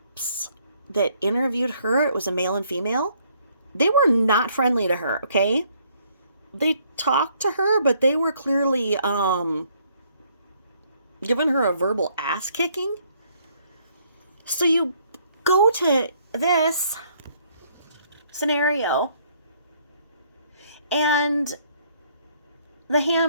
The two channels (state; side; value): inverted; both; correlation -0.66